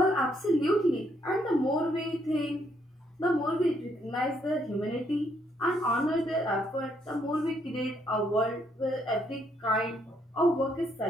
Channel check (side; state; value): both; normal; correlation 0.72